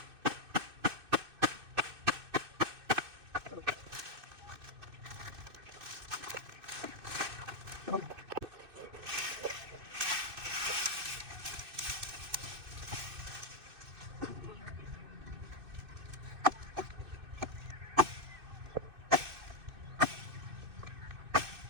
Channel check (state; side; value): late; left; 2.6 ms